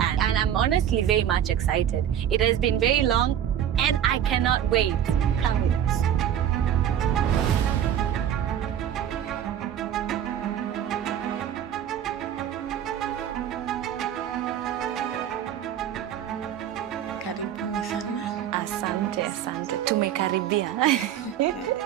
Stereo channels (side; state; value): left; quieter; 10.0 dB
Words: and I'm honestly very much excited. It has been very long, and I cannot wait. Come with us. Karibuni sana. Asante. Tumekaribia.